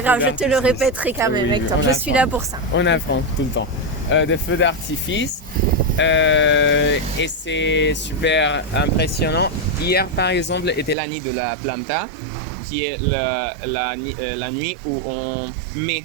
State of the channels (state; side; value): drops out; left; at 11.0 s